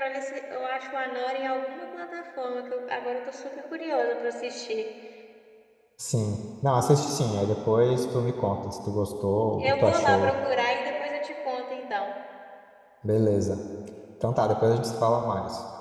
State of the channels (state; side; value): identical; both; correlation 1.00